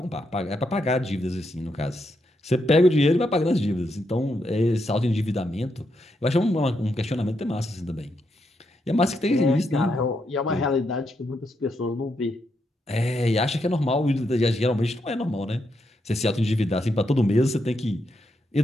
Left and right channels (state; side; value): normal; both; correlation 0.81